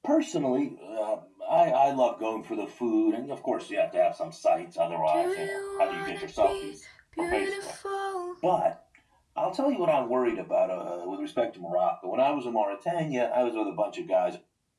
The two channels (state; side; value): identical; both; correlation 1.00